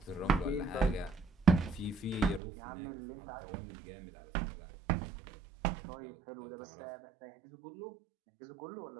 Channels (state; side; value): drops out; left; at 2.4 s